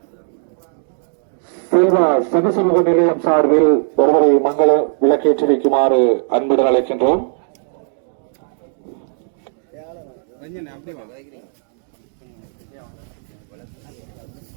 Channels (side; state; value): left; silent; digital silence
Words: செல்வா சகசமூக நிலையம் சார்பில் ஒருவரை மங்கள விளக்கேற்றி வைக்குமாறு அன்புடன் அழைக்கின்றோம்.